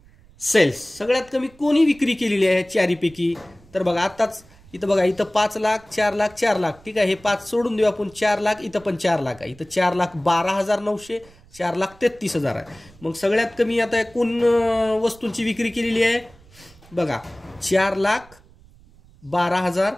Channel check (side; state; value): right; noise; rumble, 26 dB below the sound